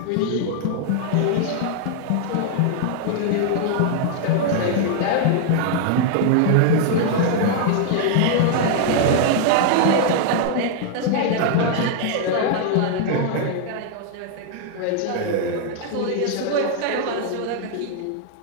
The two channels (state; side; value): different; both; correlation 0.00